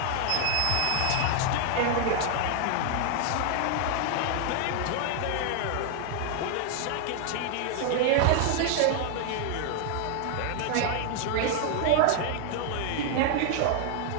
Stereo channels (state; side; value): different; both; correlation 0.00